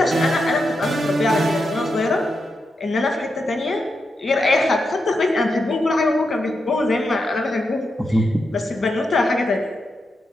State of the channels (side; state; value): both; normal; correlation 0.86